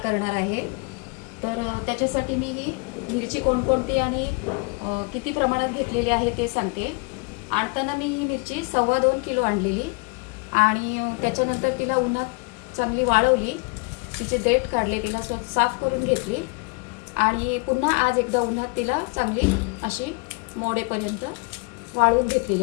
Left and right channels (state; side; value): quieter; right; 30.1 dB